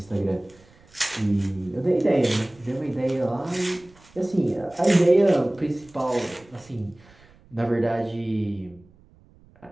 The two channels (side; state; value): right; noise; rumble, 28 dB below the sound